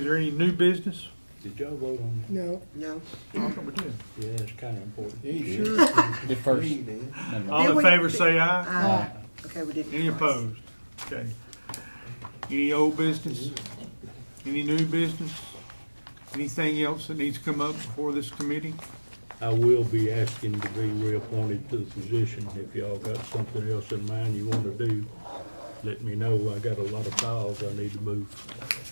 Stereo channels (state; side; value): inverted; both; correlation -1.00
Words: there any new business? Did y'all vote on No, No. I thought we did. that? Yeah, it's kind of important. At first. All in favor, say aye. Okay, we did. Any opposed? Okay. Any old business? Any new business? Anything else that needs to come up before this committee? I will be asking to be reappointed to the position. If y'all got something else in mind you want to do, let me know. I got a lot of files I need to move.